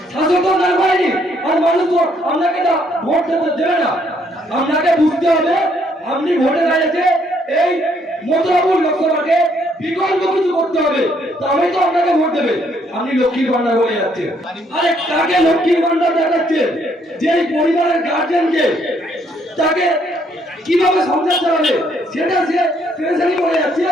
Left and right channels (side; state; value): both; normal; correlation 0.69